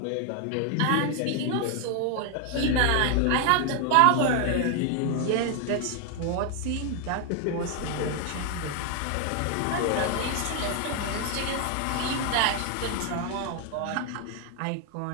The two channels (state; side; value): different; both; correlation 0.00